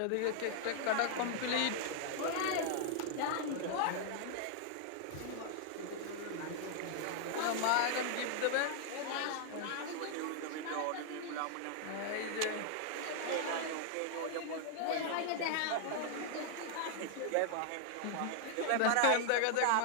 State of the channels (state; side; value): different; both; correlation -0.01